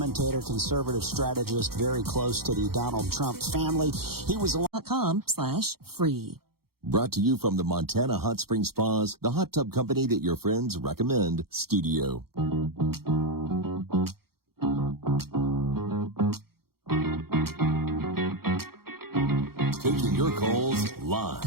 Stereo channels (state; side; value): late; left; 0.94 ms